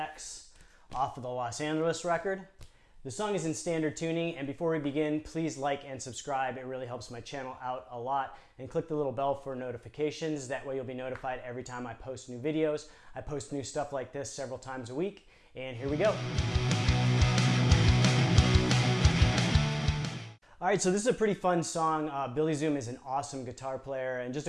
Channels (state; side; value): identical; both; correlation 1.00